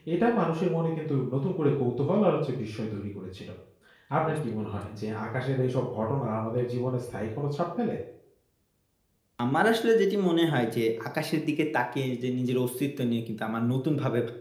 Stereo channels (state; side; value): identical; both; correlation 1.00